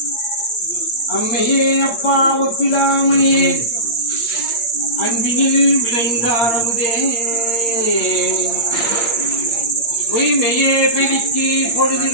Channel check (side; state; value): right; late; 8.7 ms